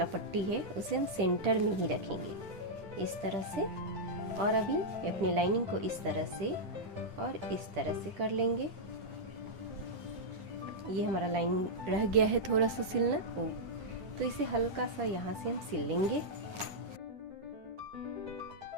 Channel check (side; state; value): left; late; 10 ms